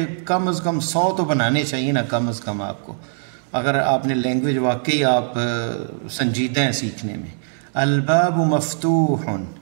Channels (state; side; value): silent; left; 65 dB below the other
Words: کم از کم 100 تو بنانے چاہیے نا، کم از کم آپ کو، اگر آپ نے لینگویج واقعی آپ سنجیدہ ہیں سیکھنے میں۔ الباب مفتوح،